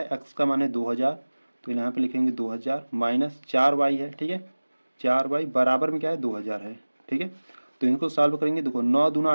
x का मान है 2000, तो यहाँ पे लिखेंगे 2000 माइनस 4y है, ठीक है। 4y बराबर में क्या है, 2000 है, ठीक है। तो इनको सॉल्व करेंगे, देखो 9 दूना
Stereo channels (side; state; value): both; inverted; correlation -1.00